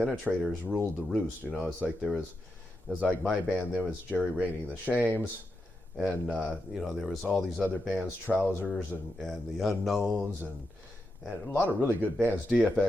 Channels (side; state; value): both; normal; correlation 0.86